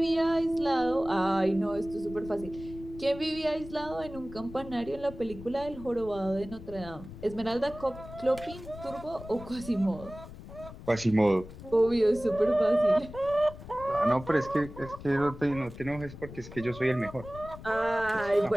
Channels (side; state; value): left; noise; rumble, 15 dB below the sound